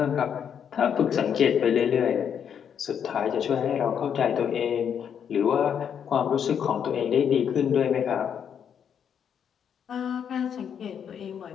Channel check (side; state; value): right; quieter; 8.1 dB